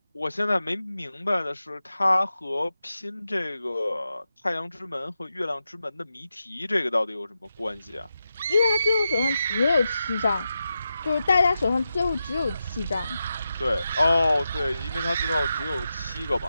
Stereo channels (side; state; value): both; inverted; correlation -0.90